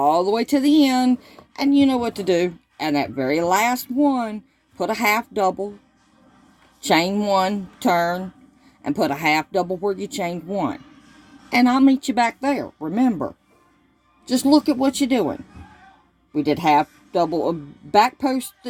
the way to the end, and you know what to do. And that very last one, put a half double, chain 1, turn, and put a half double where you chained 1. And I'll meet you back there. Remember, just look at what you're doing. We did half double, back post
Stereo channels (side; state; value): both; identical; correlation 1.00